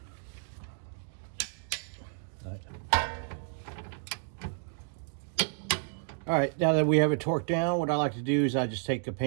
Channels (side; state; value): left; silent; 57 dB below the other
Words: All right, now that we have it torqued down, what I like to do is I just take a